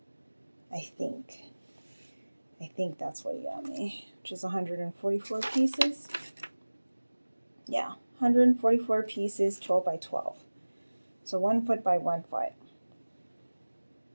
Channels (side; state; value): both; inverted; correlation -1.00